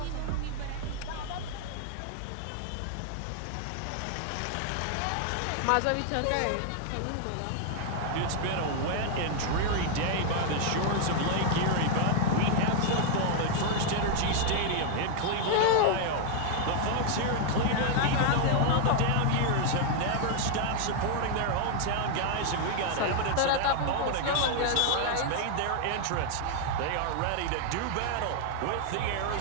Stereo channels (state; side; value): different; both; correlation 0.00